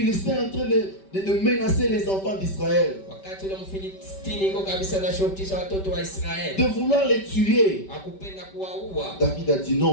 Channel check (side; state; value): right; late; 5.2 ms